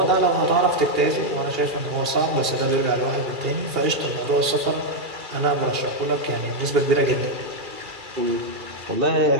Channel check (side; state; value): left; late; 2.4 ms